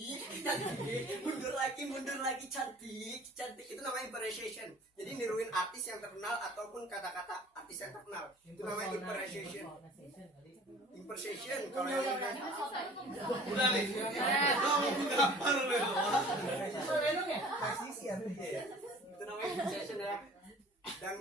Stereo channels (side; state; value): both; normal; correlation 0.48